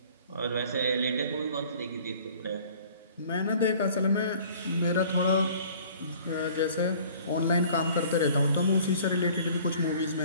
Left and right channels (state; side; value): inverted; both; correlation -0.51